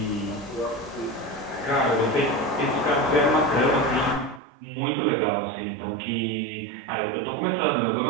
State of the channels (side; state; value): left; drops out; at 4.4 s